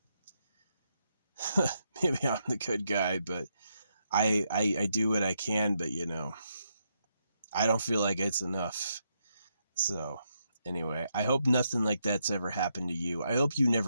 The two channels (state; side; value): inverted; both; correlation -0.80